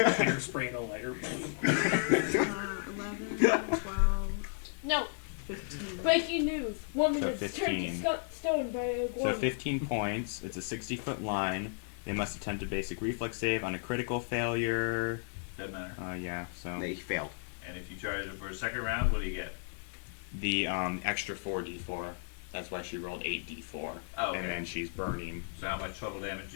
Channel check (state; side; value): silent; right; digital silence